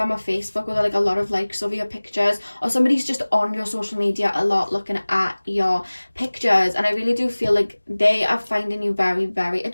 or Facebook with like a lot of likes over your pictures, or somebody's just on your social media a lot looking at your pictures, and I really do feel like they are finding you very, very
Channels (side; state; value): both; inverted; correlation -1.00